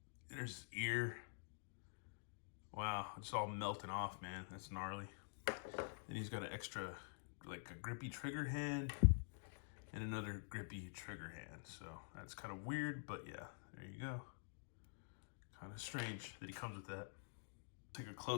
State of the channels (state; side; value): silent; right; digital silence